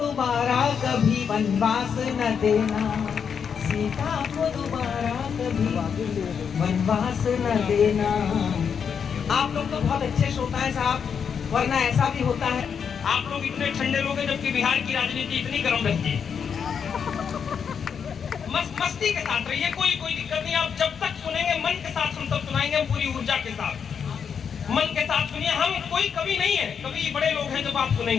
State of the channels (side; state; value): right; quieter; 7.0 dB